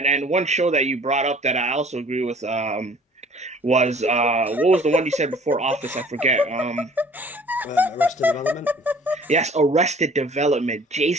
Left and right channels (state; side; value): normal; both; correlation 0.52